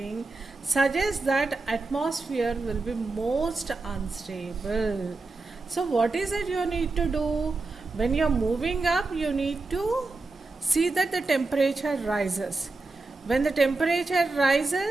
suggests that atmosphere will be most unstable. So what is it you need to do? When you are moving up, you need to see that the temperature rises. When the temperature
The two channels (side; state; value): left; quieter; 3.5 dB